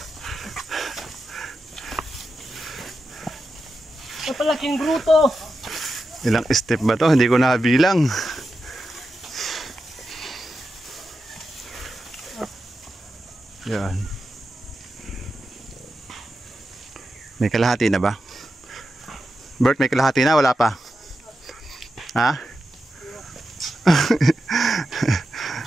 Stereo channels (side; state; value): both; normal; correlation 0.89